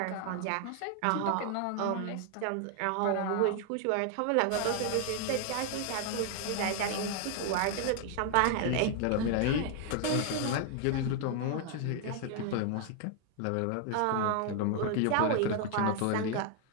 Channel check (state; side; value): different; both; correlation 0.00